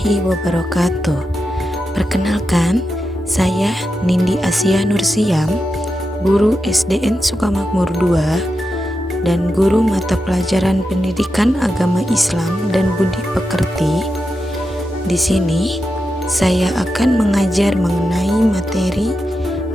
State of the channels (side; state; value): both; normal; correlation 0.88